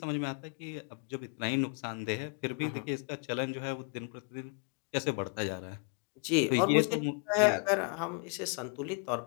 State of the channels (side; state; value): right; quieter; 36.0 dB